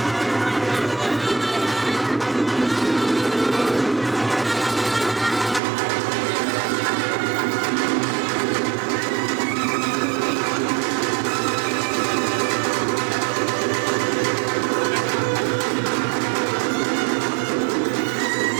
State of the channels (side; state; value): left; drops out; at 5.6 s